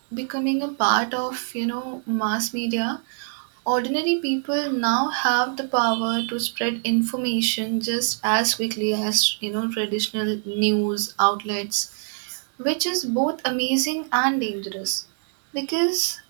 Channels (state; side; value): silent; left; 62 dB below the other